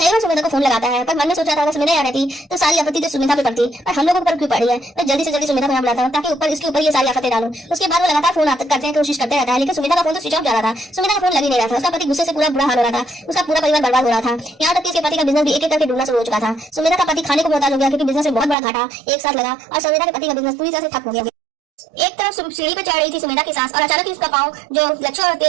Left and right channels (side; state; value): left; drops out; at 18.6 s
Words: बार सुमेधा को फोन लगाता है, पर मन में सोचा था अगर सुमेधा यहाँ रहती तो सारी आपत्ति तो सुमेधा पे पड़ती, पर हम लोगों पर क्यों पड़ी है। मैं जल्दी से जल्दी सुमेधा को यहाँ बुलाता हूँ ताकि ऊपर इसके ऊपर ये सारी आफतें डालूं। उसके बाद वो लगातार फोन करते हैं, कोशिश करते रहता है, लेकिन सुमेधा का फोन तो स्विच ऑफ जा रहा था। सुमेधा का फोन लग ही नहीं रहा था। उसका पति गुस्से से पूरा बुरा हाल हो रहा था, उसका पूरा परिवार बर्बाद हो रहा था। यहाँ तक कि उसके पति का बिजनेस भी एक एक करके डूबना शुरू हो चुका था। सुमेधा का पति खाने को मोहताज हो गया क्योंकि बिजनेस में बहुत बड़ा घाटा एक साथ लगा और सुमेधा के पति का बिजनेस पूरी तरह से ठप हो गया। एक तरफ सीढ़ी पे चढ़ रही थी सुमेधा की सास और अचानक ही उसका पाँव जो लच्छू और